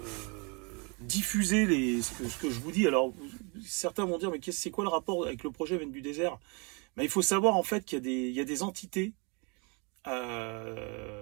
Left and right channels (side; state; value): left; quieter; 32.3 dB